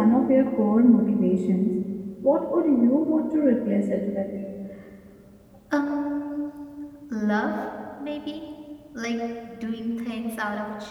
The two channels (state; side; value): identical; both; correlation 1.00